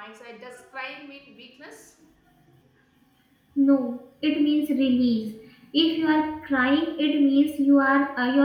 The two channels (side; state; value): both; identical; correlation 1.00